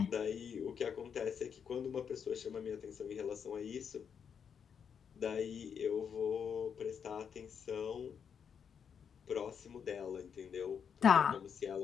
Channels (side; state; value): right; quieter; 7.2 dB